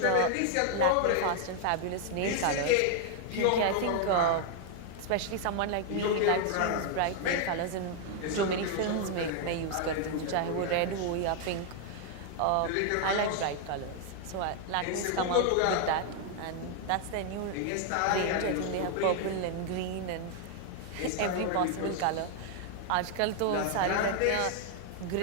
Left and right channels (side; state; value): both; different; correlation 0.00